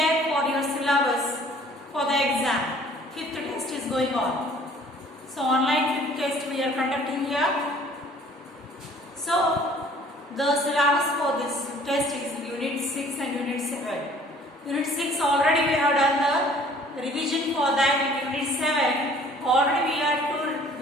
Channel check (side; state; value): both; normal; correlation 0.54